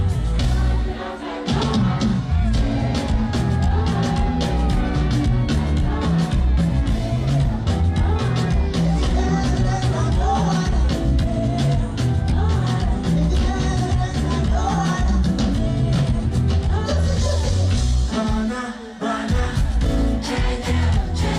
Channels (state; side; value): identical; both; correlation 1.00